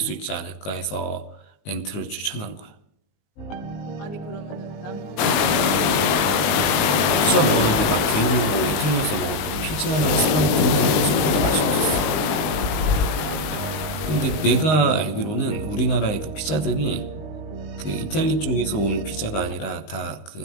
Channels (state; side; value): late; right; 20 ms